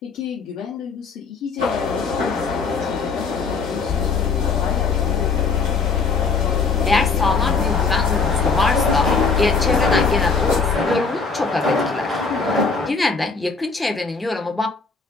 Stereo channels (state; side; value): quieter; right; 4.7 dB